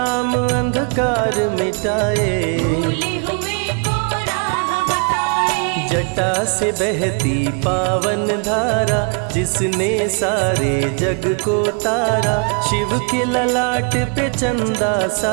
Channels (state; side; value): quieter; left; 39.1 dB